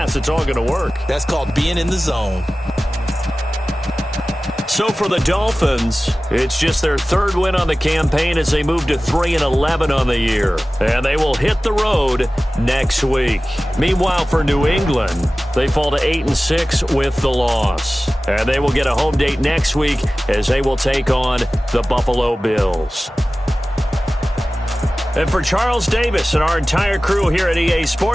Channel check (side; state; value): both; normal; correlation 0.97